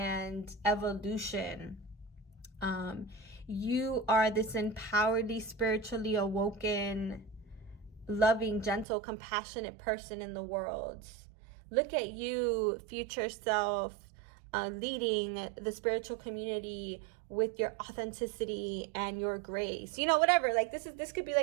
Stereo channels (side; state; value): left; drops out; at 8.8 s